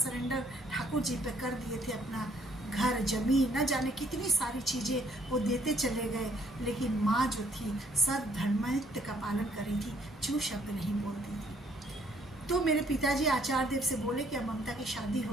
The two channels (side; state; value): both; normal; correlation 0.65